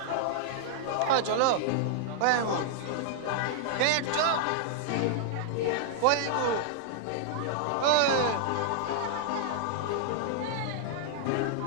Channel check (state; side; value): different; both; correlation -0.01